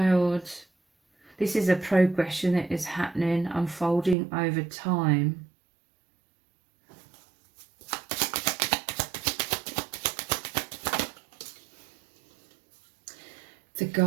This is a progression that is happening, unfolding over time. The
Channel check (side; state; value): left; drops out; at 4.2 s